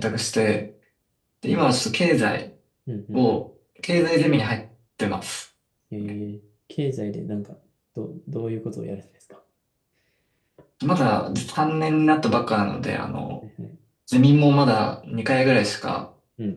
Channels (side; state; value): both; identical; correlation 1.00